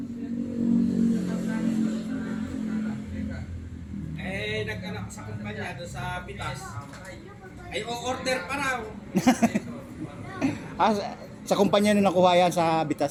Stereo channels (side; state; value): both; identical; correlation 1.00